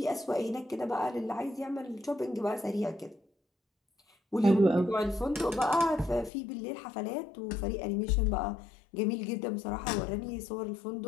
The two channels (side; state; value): right; drops out; at 6.3 s